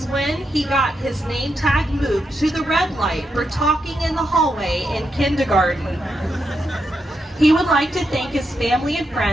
when he got his name tag moved to the red light for talking in the hallway in kindergarten. He would like to thank his family and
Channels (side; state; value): both; normal; correlation 0.84